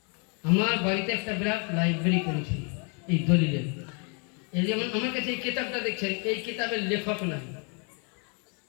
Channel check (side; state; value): right; quieter; 37.2 dB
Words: আমার বাড়িতে একটা বিরাট লাইব্রেরি করেছি এই দলিলের। এই যেমন আমার কাছে এই কিতাবটা দেখছেন, এই কিতাবের লেখক নাই,